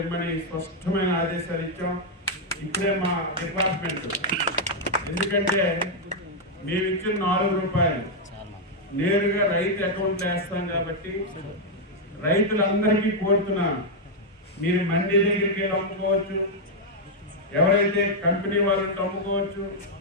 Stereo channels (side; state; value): both; normal; correlation -0.02